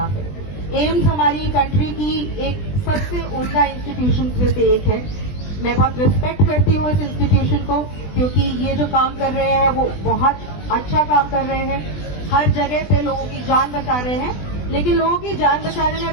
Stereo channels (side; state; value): right; late; 20 ms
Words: है। एम्स हमारी कंट्री की एक सबसे उम्दा इंस्टीट्यूशन में से एक है। मैं बहुत रिस्पेक्ट करती हूँ इस इंस्टीट्यूशन को, क्योंकि ये जो काम कर रहे हैं वो बहुत अच्छा काम कर रहे हैं। हर जगह पे लोगों की जान बचा रहे हैं, लेकिन लोगों की जान बचाने में